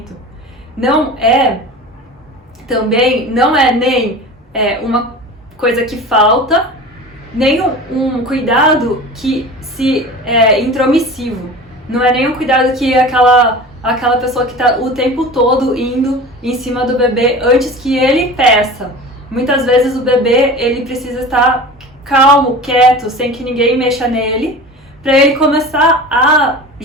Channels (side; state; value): both; normal; correlation 0.35